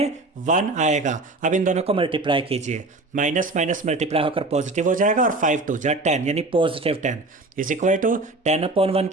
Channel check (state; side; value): quieter; left; 3.1 dB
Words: 1 आएगा। अब इन दोनों को मल्टीप्लाई कीजिए, माइनस माइनस मल्टीप्लाई होकर पॉजिटिव हो जाएगा, और 5 2 जा 10 यानी +10 इज इक्वल टू 10/1